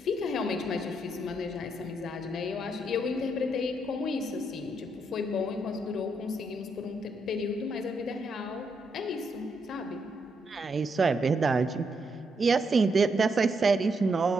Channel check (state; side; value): normal; both; correlation 0.78